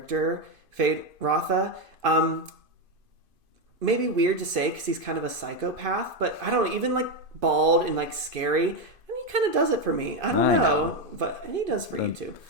Fade Rotha. Maybe weird to say because he's kind of a psychopath, but I don't know, even like bald and like scary, he kind of does it for me. I don't know, but he does for you too.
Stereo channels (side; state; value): left; late; 2.5 ms